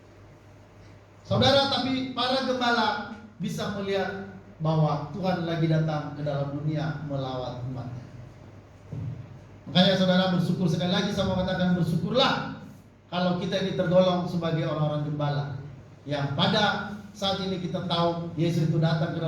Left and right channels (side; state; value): both; identical; correlation 1.00